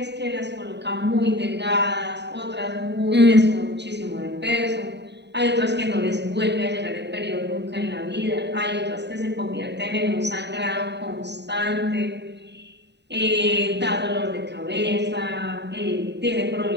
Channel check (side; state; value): left; late; 0.50 ms